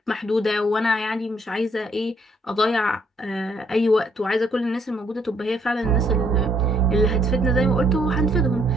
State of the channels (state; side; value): normal; both; correlation 0.69